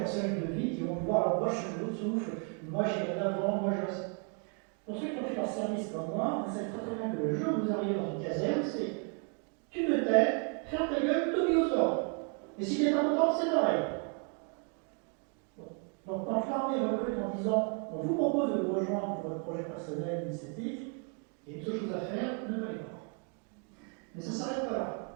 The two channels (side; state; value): left; quieter; 39.9 dB